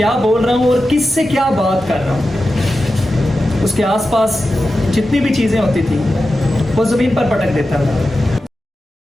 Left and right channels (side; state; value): both; normal; correlation 0.92